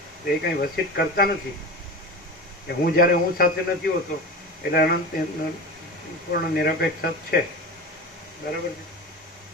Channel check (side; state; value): both; normal; correlation 0.29